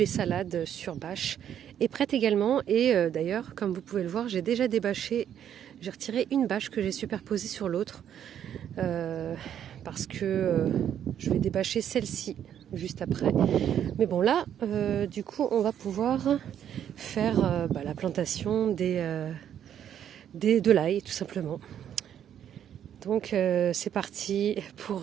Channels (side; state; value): left; quieter; 9.7 dB